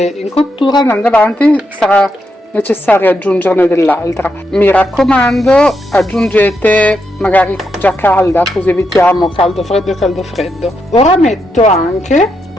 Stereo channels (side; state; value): both; normal; correlation 0.82